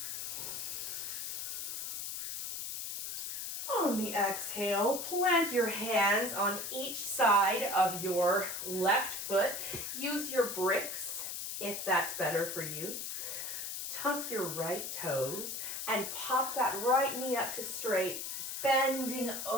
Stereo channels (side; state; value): left; noise; hiss, 5 dB below the sound